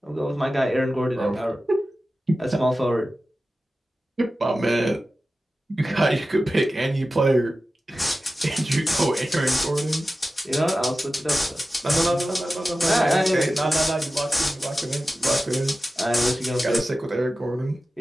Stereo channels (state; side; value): normal; both; correlation 0.94